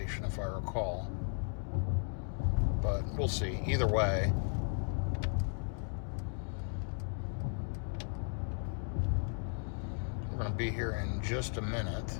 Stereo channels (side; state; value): right; silent; 54 dB below the other